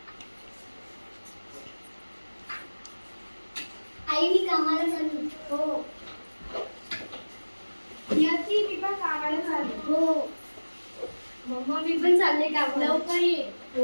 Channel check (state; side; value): inverted; both; correlation -1.00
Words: आई मी कामाला चालू. हो. नियती मी पण कामाला चालू. हो. मम्मा मी पण चालले कामाला. लवकर ये.